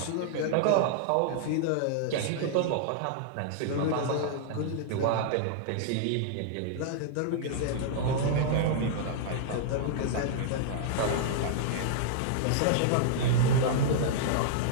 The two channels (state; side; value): different; both; correlation -0.01